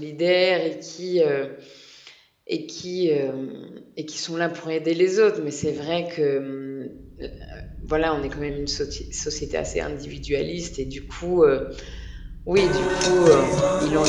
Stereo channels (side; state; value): both; identical; correlation 1.00